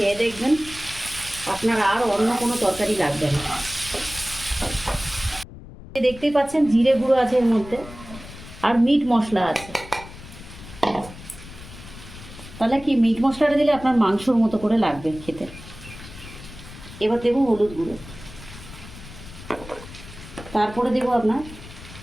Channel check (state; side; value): noise; left; rumble, 16 dB below the sound